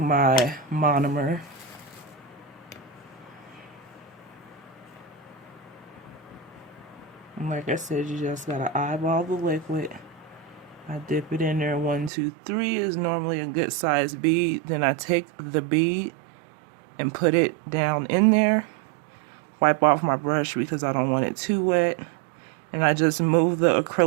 monomer. And like I said, you just gotta eyeball the liquid. I dip it in there. 1, 2, 3 is normally a good size bead. Then I take the bead and put it down in there. Wipe off my brush because I don't want it too wet. And I just move the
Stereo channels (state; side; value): drops out; left; at 12.1 s